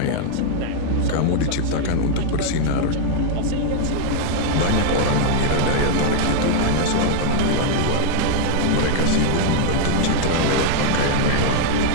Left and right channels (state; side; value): different; both; correlation 0.00